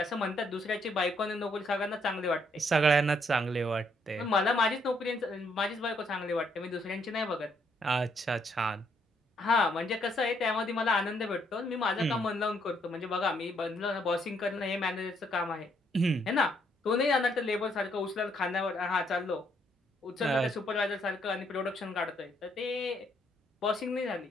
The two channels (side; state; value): both; normal; correlation 0.71